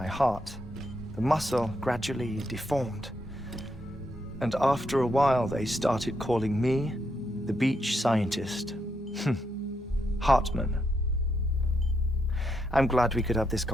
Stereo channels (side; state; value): both; normal; correlation 0.80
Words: heart. The muscle gradually deformed. And after a while, they started calling me the beach scientist. Heartman. I'm glad we could have this